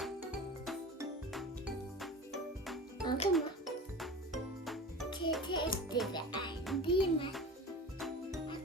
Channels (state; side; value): normal; both; correlation 0.35